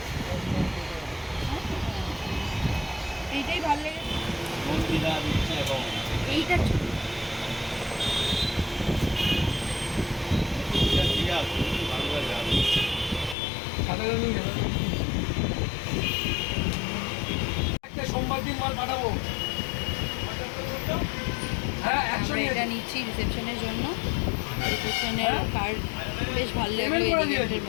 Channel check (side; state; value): right; drops out; at 13.4 s